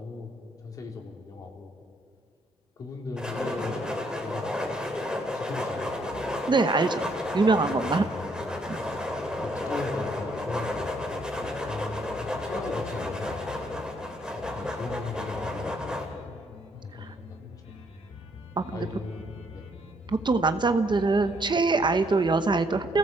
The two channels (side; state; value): both; normal; correlation 0.70